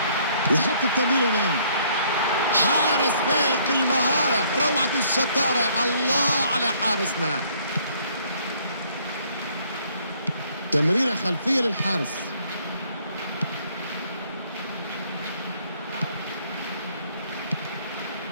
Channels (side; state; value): both; inverted; correlation -0.63